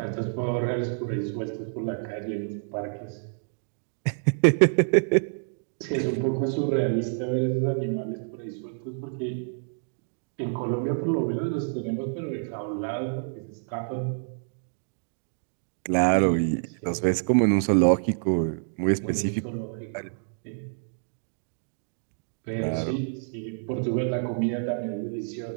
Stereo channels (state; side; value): silent; left; digital silence